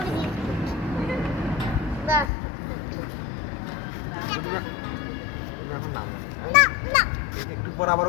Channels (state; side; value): drops out; right; at 2.3 s